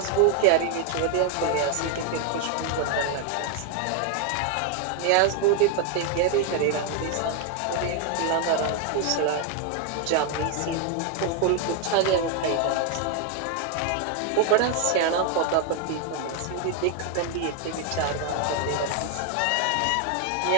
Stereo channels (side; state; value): both; different; correlation 0.01